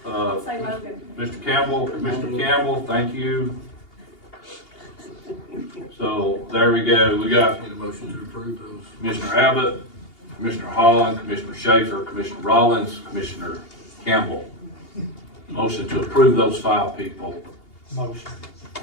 Say Logan. Mr. Campbell, Commissioner Campbell, thank you. So, there we go, we got Need a motion to approve those. Commissioner Abbott, Commissioner Holland, Commissioner Schaefer, Commissioner Rollins, Commissioner Campbell. Motion to approve those 5 people. Motion.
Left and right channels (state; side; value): late; right; 2.8 ms